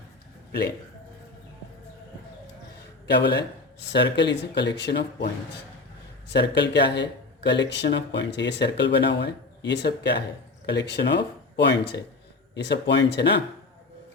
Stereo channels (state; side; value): quieter; right; 3.5 dB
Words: plane। क्या बोला है? Circle is a collection of points. Circle क्या है? Collection of points. ये circle बना हुआ है, ये सब क्या है? कलेक्शन ऑफ पॉइंट्स है। ये सब पॉइंट्स है ना।